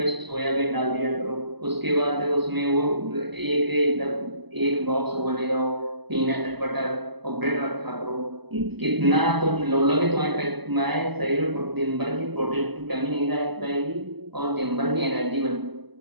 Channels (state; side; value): late; left; 0.98 ms